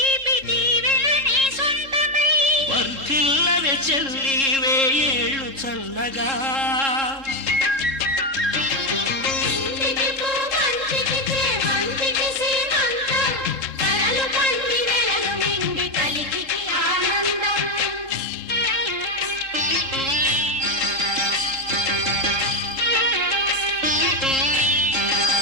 దీవెన నీ సొంతమై వర్ధిల్లవే చెల్లి వేయేళ్ళు చల్లగా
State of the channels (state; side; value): late; left; 3.7 ms